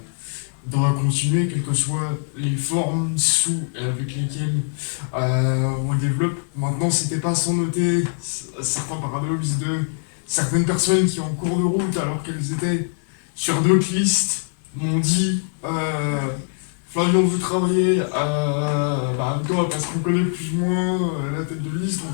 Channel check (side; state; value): right; silent; digital silence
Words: doit continuer, quelles que soient les formes sous avec lesquelles on le développe. Maintenant, c'était pas sans noter certains paradoxes de certaines personnes qui, en cours de route, alors qu'elles étaient sur d'autres listes, m'ont dit Flavien, on veut travailler avec toi parce qu'on connaît plus ou moins la tête de liste,